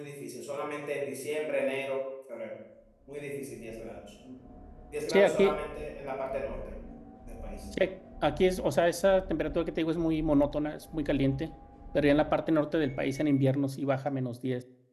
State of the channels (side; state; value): both; identical; correlation 1.00